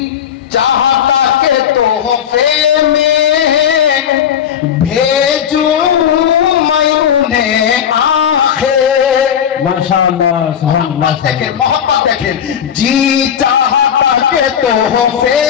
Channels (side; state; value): right; quieter; 8.9 dB